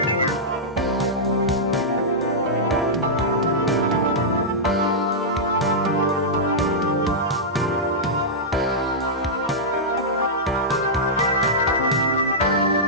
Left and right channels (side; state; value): both; normal; correlation -0.11